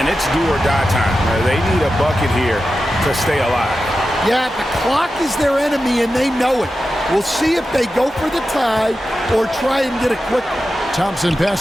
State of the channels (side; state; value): both; normal; correlation 0.92